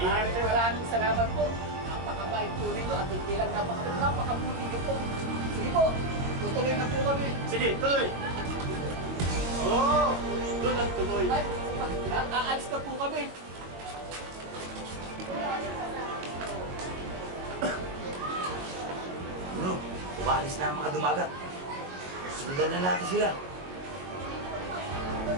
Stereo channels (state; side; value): late; left; 22 ms